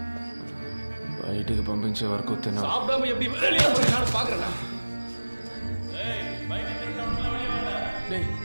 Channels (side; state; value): both; inverted; correlation -1.00